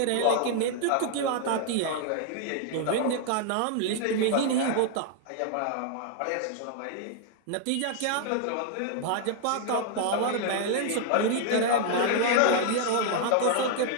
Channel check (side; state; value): both; different; correlation 0.00